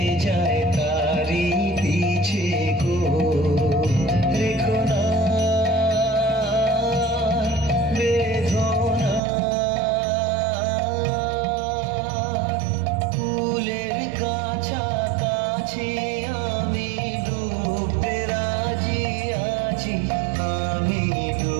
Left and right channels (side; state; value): left; drops out; at 9.2 s